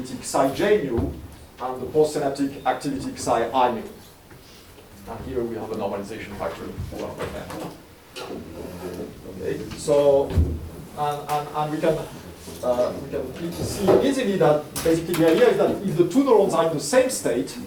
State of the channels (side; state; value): both; identical; correlation 1.00